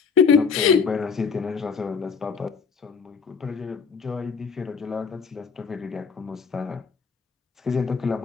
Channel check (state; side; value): quieter; right; 5.7 dB